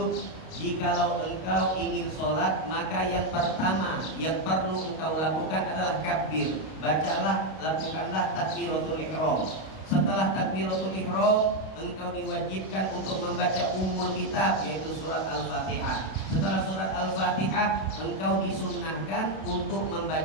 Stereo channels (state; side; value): late; right; 32 ms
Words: jikalau engkau ingin sholat, maka yang pertama yang perlu engkau lakukan adalah kabir. Bacalah, lakukanlah takbiratul ihram. Setelah takbiratul ihram, engkau diwajibkan untuk membaca ummul kitab, yaitu surat Al-Fatihah. Setelah surat Al-Fatihah, engkau disunnahkan untuk